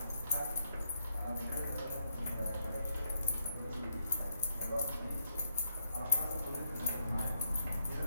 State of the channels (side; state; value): both; inverted; correlation -0.78